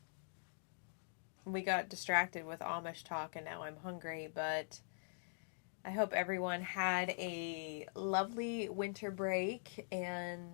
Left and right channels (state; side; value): silent; right; digital silence